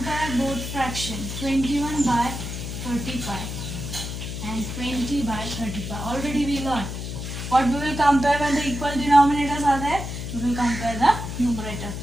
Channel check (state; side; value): noise; left; hum, 6 dB below the sound